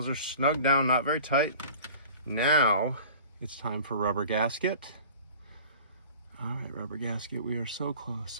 are snug down, not very tight. Now it's time for rubber gasket. All right, rubber gasket, we are so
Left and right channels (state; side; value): inverted; both; correlation -0.44